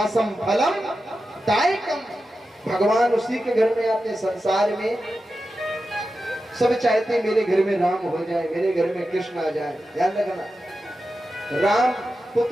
फलम दायकम। भगवान उसी के घर में आते हैं। संसार में सब चाहते हैं मेरे घर में राम हो जाए, मेरे घर में कृष्ण आ जाए। ध्यान रखना, राम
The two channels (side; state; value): both; normal; correlation 0.91